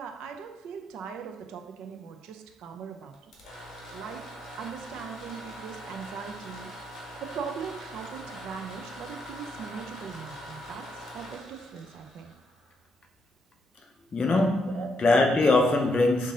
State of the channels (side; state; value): both; normal; correlation 0.78